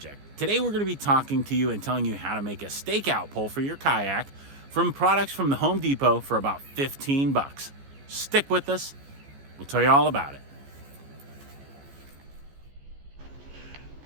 Today we're going to be talking to you and telling you how to make a stakeout pole for your kayak from products from the Home Depot for about 15 bucks. Stick with us. We'll tell you all about it.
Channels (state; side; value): late; left; 14 ms